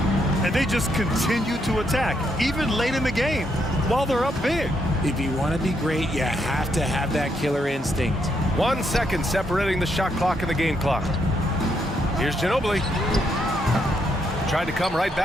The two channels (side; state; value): both; normal; correlation 0.77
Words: And they just continue to attack, even late in the game, while they're up big. If you want to be great, you have to have that killer instinct. 1 second separating the shot clock and the game clock. Here's Ginobili. Tried to come right